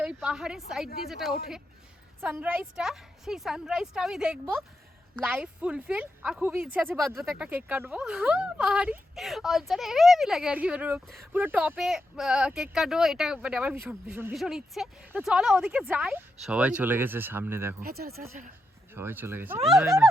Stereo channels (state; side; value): normal; both; correlation 0.85